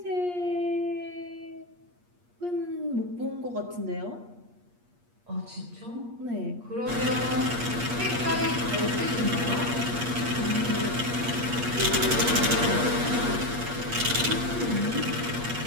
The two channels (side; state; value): left; late; 8.4 ms